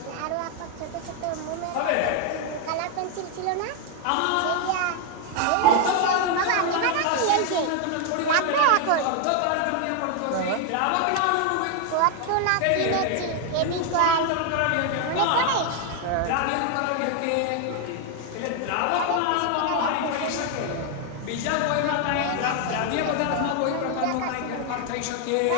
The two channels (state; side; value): different; both; correlation 0.01